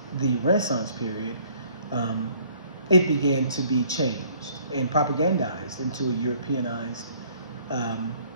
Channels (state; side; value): inverted; both; correlation -0.59